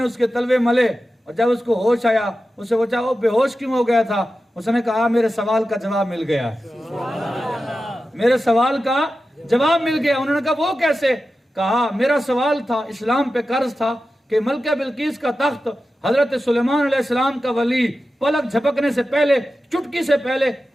اس کے تلوے ملے اور جب اس کو ہوش آیا اس سے پوچھا وہ بے ہوش کیوں ہو گیا تھا؟ اس نے کہا میرے سوال کا جواب مل گیا, میرے سوال کا جواب مل گیا. انہوں نے کہا وہ کیسے؟ کہا میرا سوال تھا, اسلام پہ قرض تھا کہ ملکہ بلقیس کا تخت حضرت سلیمان علیہ السلام کا ولی پلک جھپکنے سے پہلے, چٹکی سے پہلے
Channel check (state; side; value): normal; both; correlation 0.93